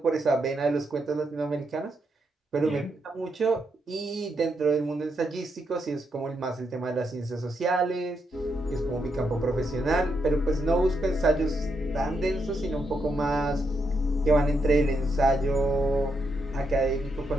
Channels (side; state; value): both; normal; correlation 0.80